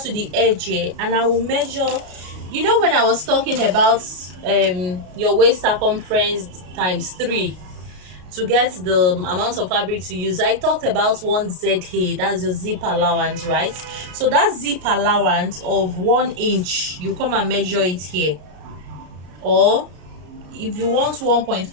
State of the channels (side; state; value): left; late; 33 ms